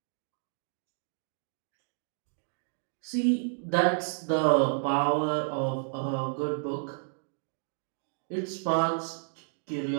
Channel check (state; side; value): silent; left; digital silence